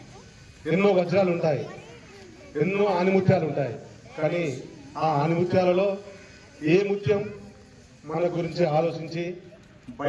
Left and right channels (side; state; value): both; identical; correlation 1.00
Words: ఎన్నో వజ్రాలు ఉంటాయి, ఎన్నో ఆనిముత్యాలు ఉంటాయి. కానీ ఆ ఆనిముత్యాలలో ఏ ముత్యం మన గురించి ఆలోచించి